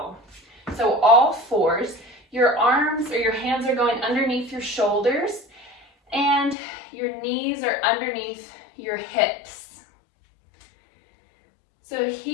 So all fours, your arms or your hands are going underneath your shoulders, and your knees are underneath your hips. So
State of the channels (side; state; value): right; drops out; at 6.6 s